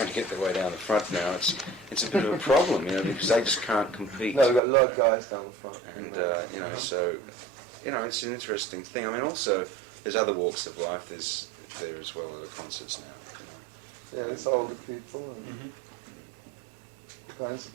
to get their way down the front now. It's a bit of a problem, because they just can't compete. No, we've got a lot of guys down the front. And so it's an interesting thing. Also there's other walks of life there as well at the concerts now. Yeah, it's older people and all kinds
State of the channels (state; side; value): drops out; left; at 4.6 s